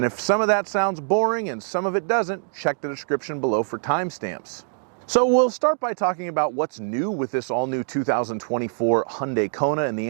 if some of that sounds boring and some of it doesn't, check the description below for timestamps. So we'll start by talking about what's new with this all-new 2024 Hyundai Kona, and the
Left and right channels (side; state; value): left; silent; 63 dB below the other